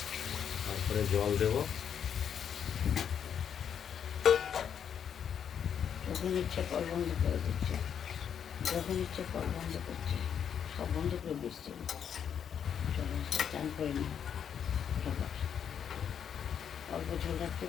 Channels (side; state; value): right; quieter; 8.2 dB